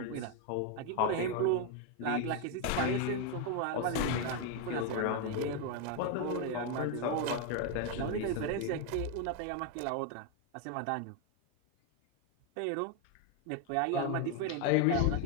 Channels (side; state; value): both; different; correlation 0.01